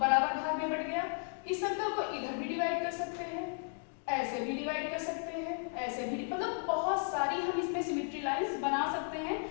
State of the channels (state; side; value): silent; right; 55 dB below the other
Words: भाग में बट गया। इस सर्कल को इधर भी डिवाइड कर सकते हैं, ऐसे भी डिवाइड कर सकते हैं, ऐसे भी, मतलब बहुत सारी हम इसमें सिमेट्री लाइंस बना सकते हैं